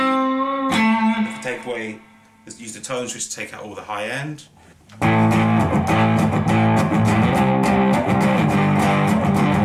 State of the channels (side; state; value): both; identical; correlation 1.00